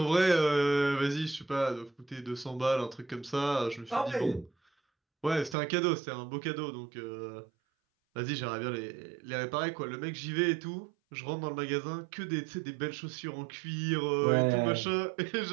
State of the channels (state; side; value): drops out; left; at 5.6 s